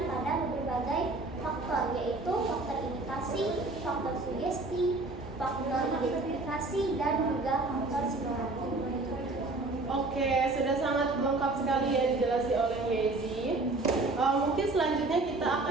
pada berbagai faktor, yaitu faktor imitasi, faktor sugesti, faktor identifikasi, dan juga faktor simulasi. Oke, sudah sangat lengkap sekali ya dijelaskan oleh Yezi. Mungkin selanjutnya kita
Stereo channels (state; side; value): quieter; left; 3.2 dB